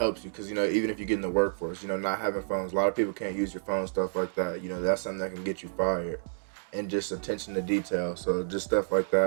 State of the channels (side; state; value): left; silent; digital silence